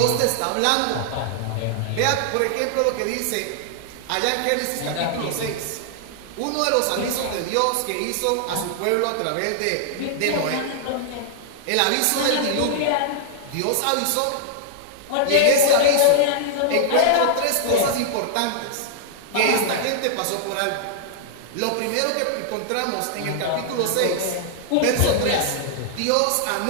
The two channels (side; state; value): both; different; correlation -0.01